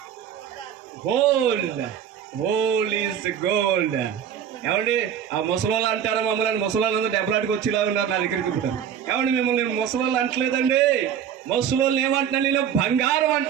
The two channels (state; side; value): quieter; left; 8.9 dB